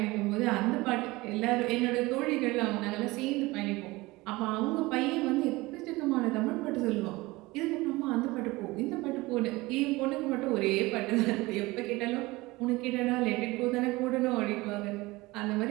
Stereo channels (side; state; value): left; quieter; 21.2 dB